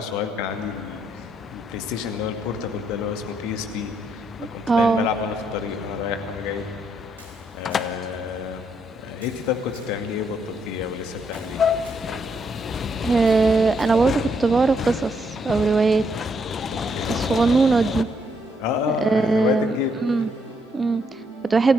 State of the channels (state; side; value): normal; both; correlation 0.75